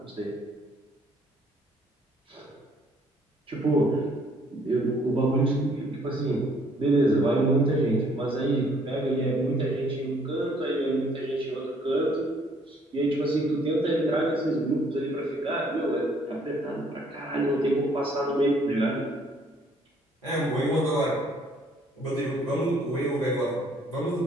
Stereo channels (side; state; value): both; normal; correlation 0.63